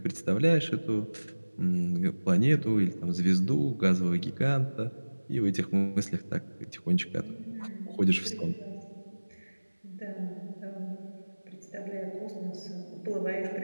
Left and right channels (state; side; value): inverted; both; correlation -1.00